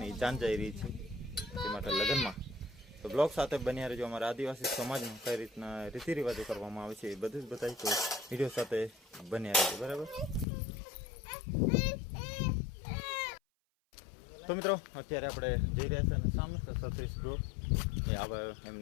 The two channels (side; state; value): right; drops out; at 10.5 s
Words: જાન જઈ રહી છે તે માટે લગ્નમાં. તો બ્લોગ સાથે બન્યા રહેજો. અમારા આદિવાસી સમાજમાં કઈ રીતના રીતિ રિવાજો કરવામાં આવે છે એ બધું જ બતાવી, તો વિડીયો સાથે બન્યા રહેજો, બરાબર? તો મિત્રો, અત્યારે આપણે જઈ રહ્યા છીએ અને સામે છે સતીશ બ્રો, એ આવે